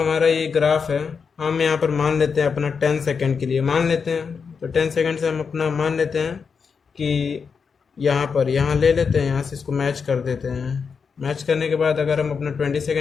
ये ग्राफ है, हम यहाँ पर मान लेते हैं अपना 10 सेकेंड के लिए मान लेते हैं। तो 10 सेकेंड से हम अपना मान लेते हैं कि यहाँ ले लेते हैं, यहाँ से इसको मैच कर देते हैं। मैच करने के बाद अगर हम अपना 20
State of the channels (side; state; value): right; quieter; 5.8 dB